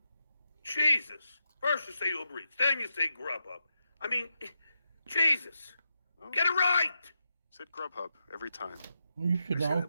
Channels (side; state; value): both; inverted; correlation -0.86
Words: Jesus. First you say Uber Eats, then you say Grubhub. I mean, Jesus. Oh. Get it right. Said Grubhub every time. Well, you I should say know.